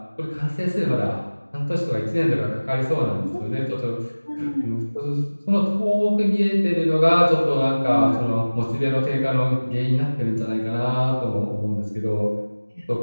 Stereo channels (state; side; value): inverted; both; correlation -1.00